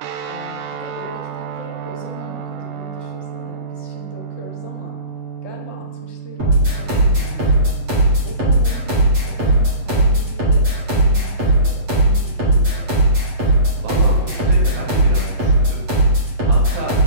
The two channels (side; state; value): left; late; 8.1 ms